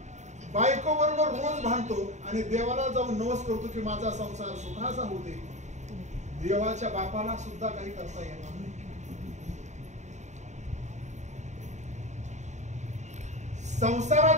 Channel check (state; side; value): late; left; 0.34 ms